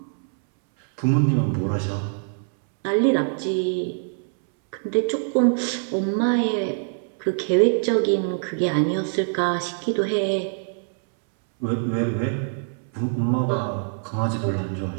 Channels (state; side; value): silent; left; 63 dB below the other